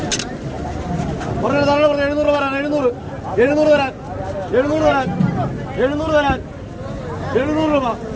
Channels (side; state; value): both; identical; correlation 1.00